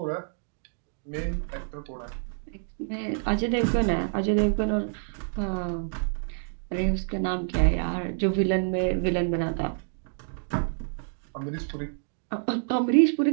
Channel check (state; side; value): silent; left; digital silence